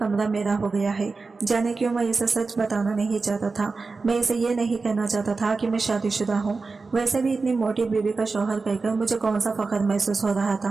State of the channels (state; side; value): quieter; left; 4.1 dB